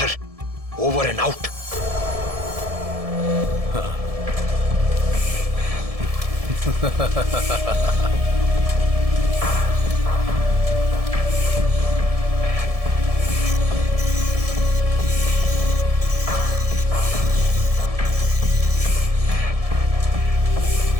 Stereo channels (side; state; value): left; late; 1.7 ms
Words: over and out.